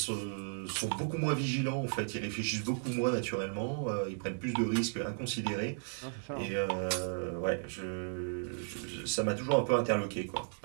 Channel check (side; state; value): left; silent; digital silence